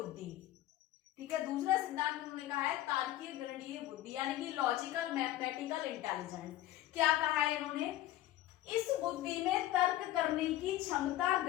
ठीक है, दूसरा सिद्धांत उन्होंने कहा है तार्किक गणितीय बुद्धि, यानी कि लॉजिकल मैथमेटिकल इंटेलिजेंस। क्या कहा है इन्होंने? इस बुद्धि में तर्क करने की क्षमता,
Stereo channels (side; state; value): right; quieter; 14.5 dB